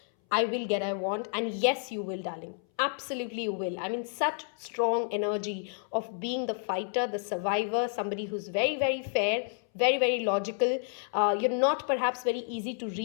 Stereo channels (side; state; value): right; silent; 58 dB below the other